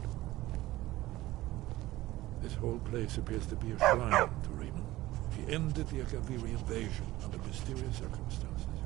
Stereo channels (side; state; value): left; quieter; 17.1 dB